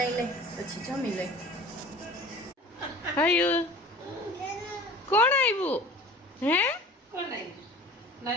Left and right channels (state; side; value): normal; both; correlation 0.42